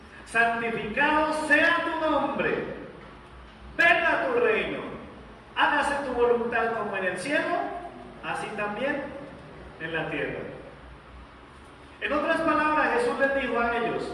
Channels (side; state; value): both; identical; correlation 1.00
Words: santificado sea tu nombre, venga tu reino, hágase tu voluntad como en el cielo, así también en la tierra. En otras palabras, Jesús les dijo a